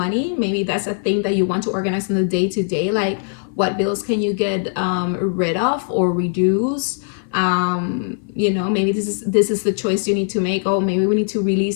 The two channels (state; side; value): silent; right; 57 dB below the other